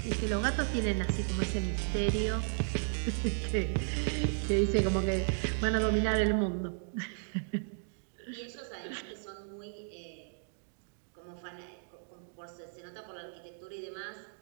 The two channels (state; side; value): silent; left; digital silence